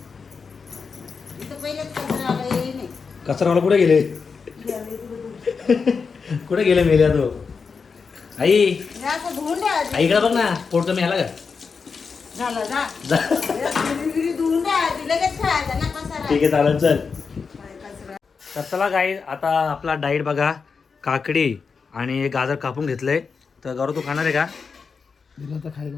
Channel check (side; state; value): right; quieter; 5.3 dB